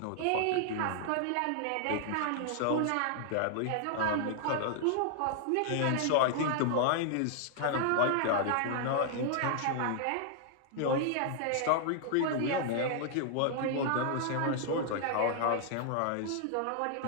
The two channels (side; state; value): both; different; correlation 0.00